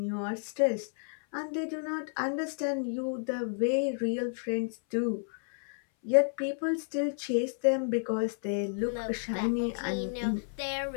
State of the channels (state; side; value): silent; right; 57 dB below the other